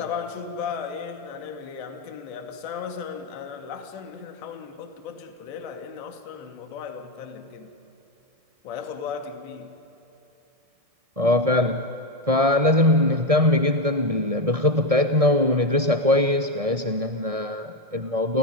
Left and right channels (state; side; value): late; left; 1.7 ms